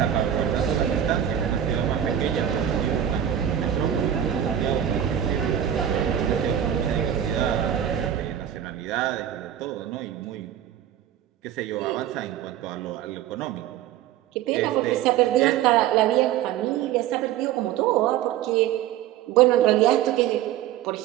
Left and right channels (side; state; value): left; quieter; 10.6 dB